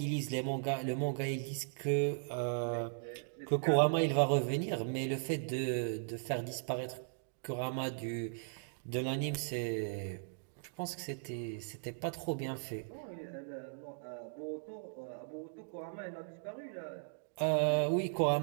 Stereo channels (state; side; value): silent; left; digital silence